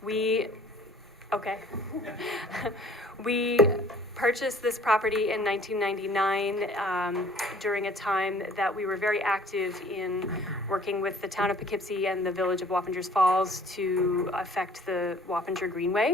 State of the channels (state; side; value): normal; both; correlation 0.53